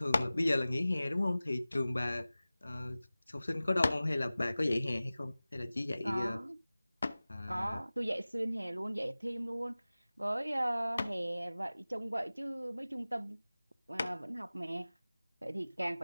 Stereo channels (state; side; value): inverted; both; correlation -0.98